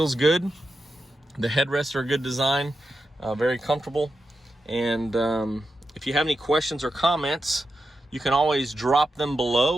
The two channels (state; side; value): normal; both; correlation 0.89